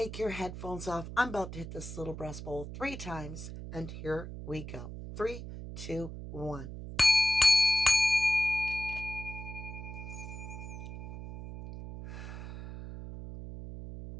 your headphones off. I'm about to hit this little breast bowl 3 times, and here we go. 3, 2, 1.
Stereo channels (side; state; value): right; noise; hum, 9 dB below the sound